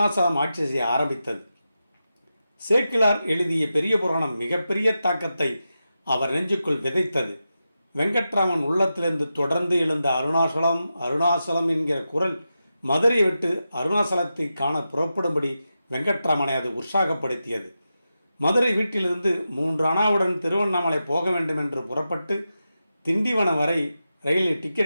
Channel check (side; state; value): both; inverted; correlation -0.90